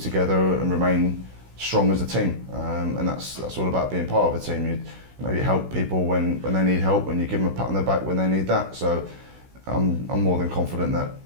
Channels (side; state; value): left; late; 16 ms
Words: and remain strong as a team. And that's all about being part of a team. You help people when they need help, and you give them a pat on the back when they need that. So I'm more than confident that